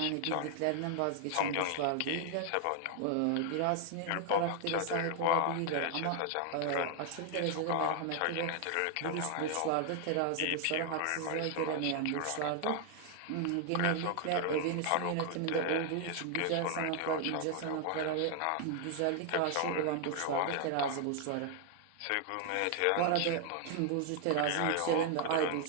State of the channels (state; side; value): different; both; correlation 0.00